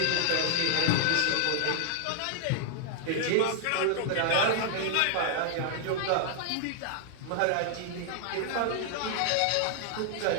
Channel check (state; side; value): different; both; correlation -0.01